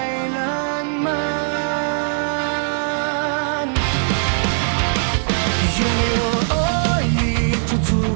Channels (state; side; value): silent; left; 64 dB below the other